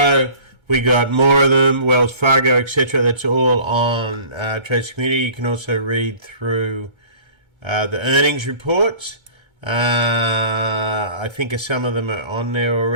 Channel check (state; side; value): late; left; 1.3 ms